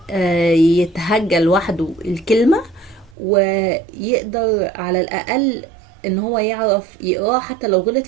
يتهجى لوحده الكلمة، ويقدر على الاقل ان هو يعرف يقراه حتى لو غلط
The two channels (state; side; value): drops out; left; at 3.2 s